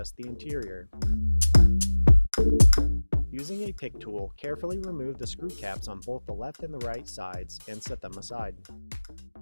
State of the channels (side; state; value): both; inverted; correlation -1.00